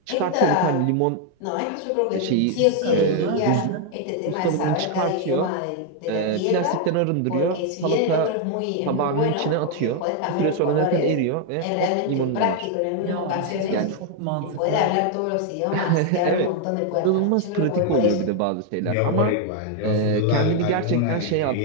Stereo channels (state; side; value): different; both; correlation 0.00